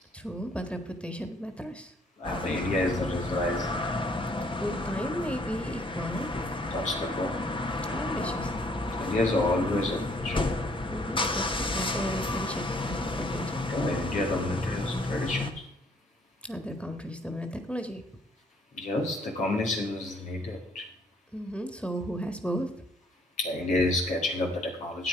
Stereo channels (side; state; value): both; normal; correlation 0.64